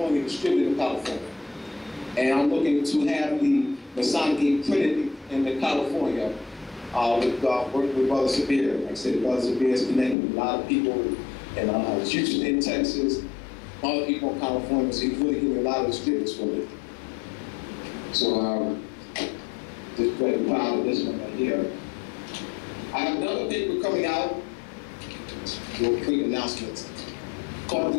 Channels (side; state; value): right; drops out; at 10.2 s